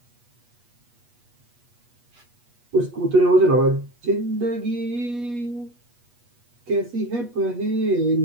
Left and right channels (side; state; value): left; late; 8.3 ms